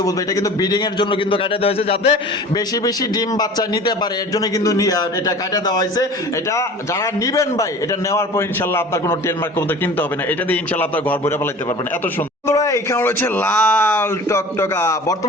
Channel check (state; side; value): normal; both; correlation 0.41